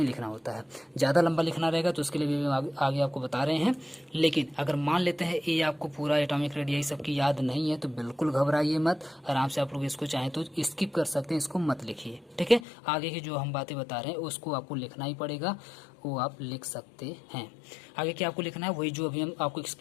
लिखना होता है। ज़्यादा लंबा लिखना रहेगा तो उसके लिए भी आगे आपको बता रहे हैं। लेकिन अगर मान लेते हैं ये आपको पूरा एटॉमिक रेडियस सबकी याद नहीं है तो बिल्कुल घबराइए मत, आराम से आप लोग इसको चाहें तो स्किप कर सकते हैं, इसको मत लिखिए, ठीक है। आगे की जो हम बातें बता रहे हैं उसको आपको लिखना ही पड़ेगा, वो आप लिख सकते हैं। आगे क्या आपको लिखना है, वही जो अभी हम आपको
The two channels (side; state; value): right; drops out; at 12.7 s